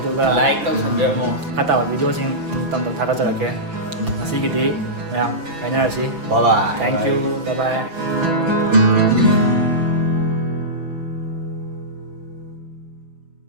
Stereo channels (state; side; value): late; left; 6.2 ms